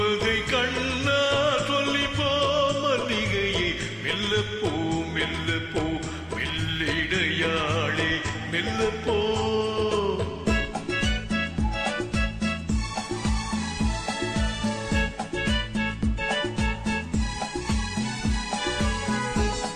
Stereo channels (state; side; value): identical; both; correlation 1.00